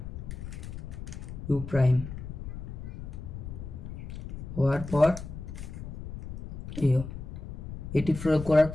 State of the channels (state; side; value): noise; left; rumble, 9 dB below the sound